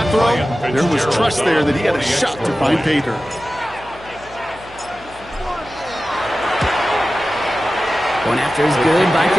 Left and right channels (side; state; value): left; noise; hum, 22 dB below the sound